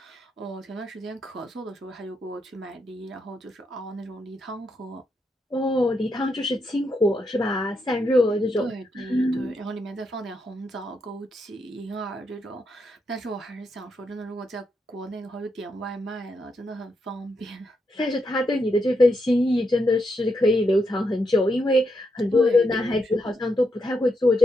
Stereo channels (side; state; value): both; normal; correlation 0.81